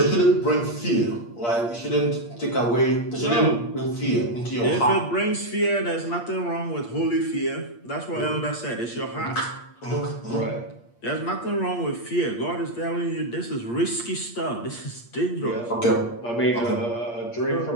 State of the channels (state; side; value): late; right; 8.5 ms